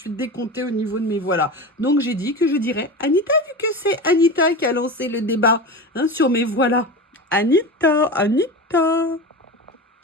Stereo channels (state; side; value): normal; both; correlation 0.27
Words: décomptée au niveau de mes voilà. Donc j'ai dit que je dirais Anita, vu que c'est Anita qui a lancé le débat sur mes voilà. Anita.